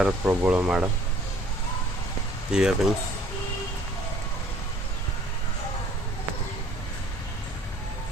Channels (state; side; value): normal; both; correlation 0.57